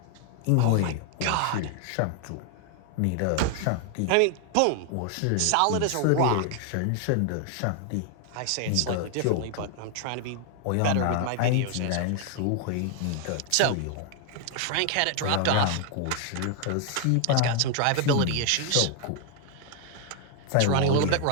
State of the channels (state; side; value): different; both; correlation 0.00